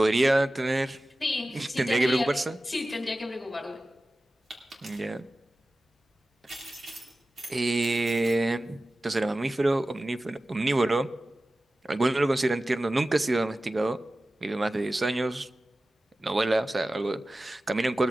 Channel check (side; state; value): both; normal; correlation 0.96